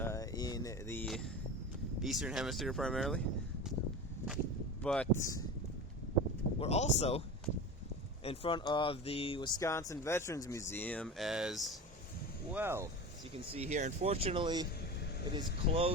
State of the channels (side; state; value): both; normal; correlation 0.29